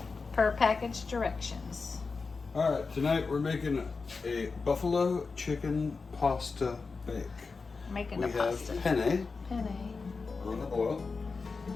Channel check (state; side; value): quieter; right; 4.4 dB